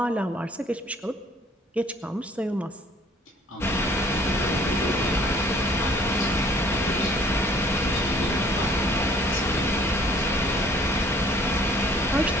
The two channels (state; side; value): normal; both; correlation 0.57